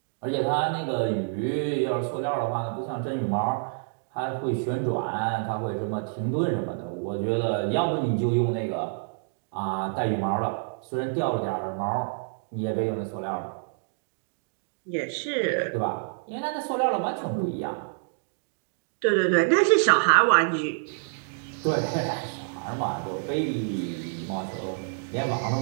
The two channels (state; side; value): silent; left; digital silence